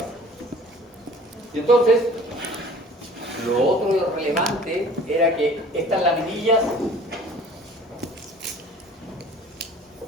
Y entonces, lo otro relevante era que estas laminillas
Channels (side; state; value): both; normal; correlation 0.48